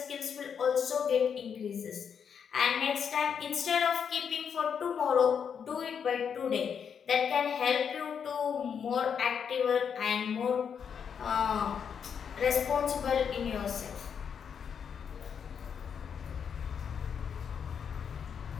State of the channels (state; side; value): quieter; right; 7.2 dB